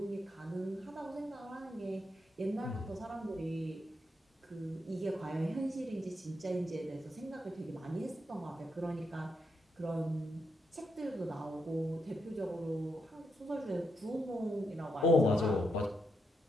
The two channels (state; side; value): normal; both; correlation 0.81